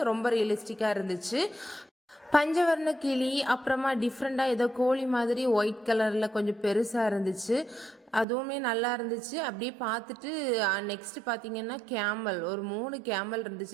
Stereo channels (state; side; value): drops out; left; at 8.2 s